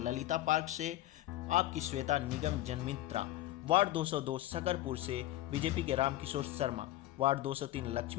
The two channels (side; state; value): right; quieter; 15.6 dB